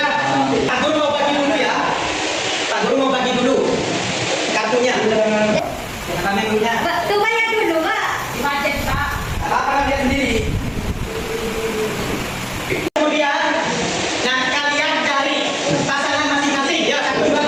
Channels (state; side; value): identical; both; correlation 1.00